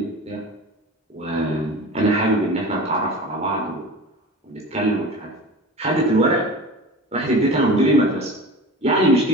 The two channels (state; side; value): normal; both; correlation 0.34